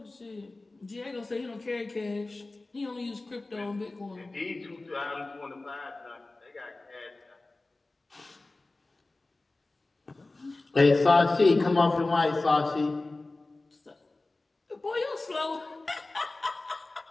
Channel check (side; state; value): right; quieter; 3.1 dB